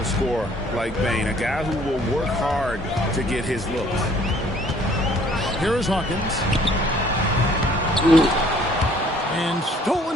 scorer like Bane, a guy who will work hard to get his looks. Here is Hawkins. And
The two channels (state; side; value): normal; both; correlation 0.58